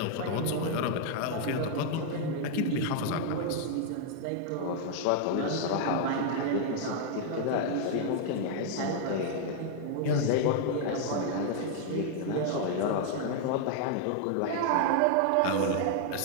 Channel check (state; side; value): different; both; correlation 0.00